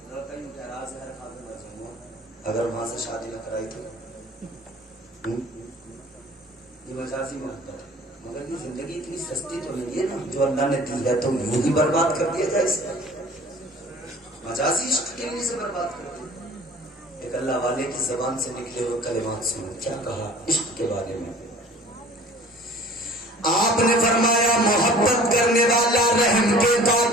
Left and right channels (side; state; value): both; normal; correlation 0.47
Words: لڑکا یوں کہہ رہا زہر کھا کے مر جاؤں گا اگر وہاں سے شادی نہ کرائی تو. یہ مجازی محبت ہے. مگر یہ زندگی اتنی سستی تو نہیں ہے نا جو اللہ نے دی ہے تو یوں ہی برباد کر دیا جائے. اس مجازی عشق کے لیے سے برباد کر دیا. ایک اللہ والے کی زبان سے نکلے ہوئے کلمات سنو, کیا کہا عشق کے بارے میں. آپ نے فرمایا محبت کرنے والا رحم کے